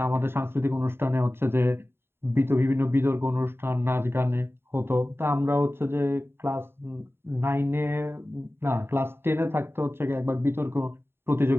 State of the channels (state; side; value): late; left; 0.11 ms